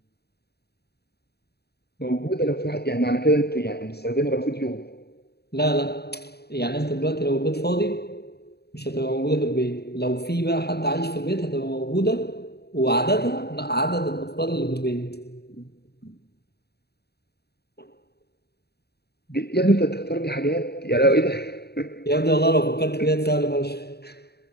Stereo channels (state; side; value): late; right; 0.47 ms